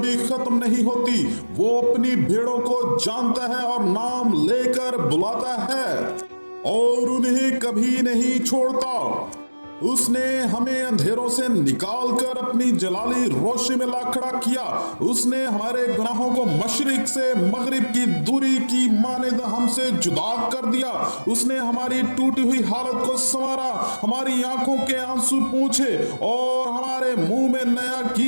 खत्म नहीं होती। वो अपनी भेड़ों को जानता है और नाम लेकर बुलाता है और उन्हें कभी नहीं छोड़ता। उसने हमें अंधेरों से निकालकर अपनी जलाली रोशनी में ला खड़ा किया। उसने हमारे गुनाहों को मशरिक से मगरिब की दूरी की मानिंद हमसे जुदा कर दिया। उसने हमारी टूटी हुई हालत को संवारा, हमारी आंखों के आंसू पूछे और हमारे मुंह में नया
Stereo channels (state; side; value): inverted; both; correlation -1.00